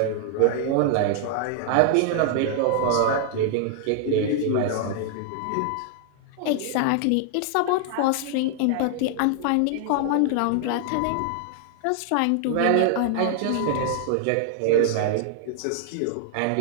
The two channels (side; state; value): both; different; correlation 0.00